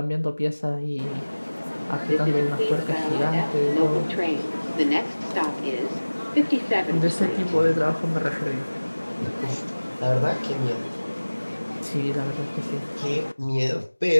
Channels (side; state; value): both; inverted; correlation -1.00